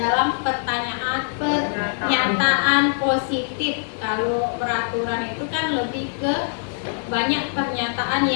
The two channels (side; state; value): right; silent; digital silence